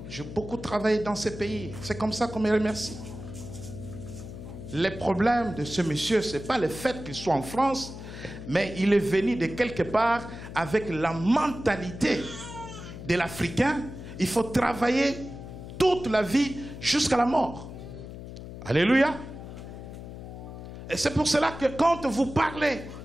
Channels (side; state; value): left; noise; hum, 11 dB below the sound